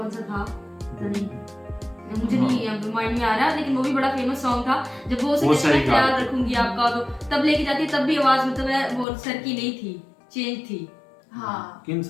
सा था पता नहीं, मुझे नहीं माइंड में आ रहा, लेकिन वो भी बड़ा फेमस सॉन्ग था। जब वो उसे वो कहते सही हैं कहा। याद रखूंगी आपका, तो तब लेके जाती है तब भी आवाज मतलब है वो सर की नहीं थी, चेंज थी। हाँ किन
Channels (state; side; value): drops out; right; at 9.1 s